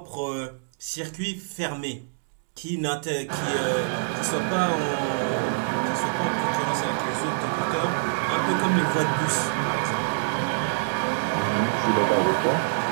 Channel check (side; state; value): left; silent; digital silence